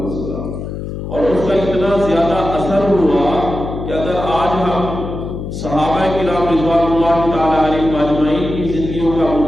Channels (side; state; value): left; noise; hum, 7 dB below the sound